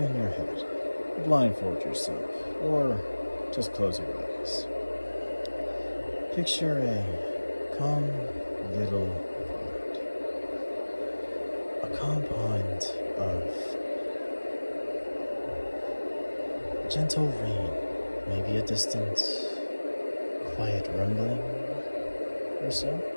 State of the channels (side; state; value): both; inverted; correlation -1.00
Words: your head, blindfold yourself, or just close your eyes. Picture a calm little pond. A calm pond of gentle rain, maybe a distant quiet rumbling or so.